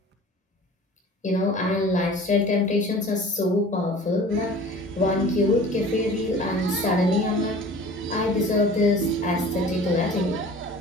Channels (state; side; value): normal; both; correlation 0.44